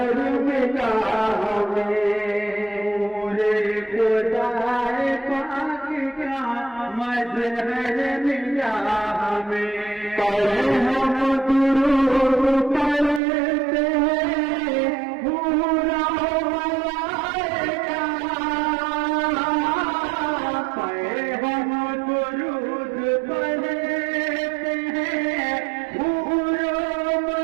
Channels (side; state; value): left; drops out; at 13.2 s